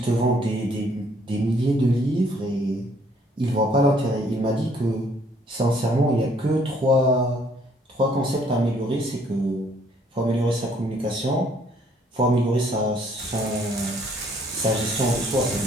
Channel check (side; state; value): both; normal; correlation 0.63